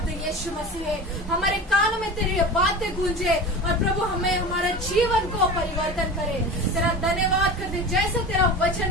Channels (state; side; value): normal; both; correlation 0.32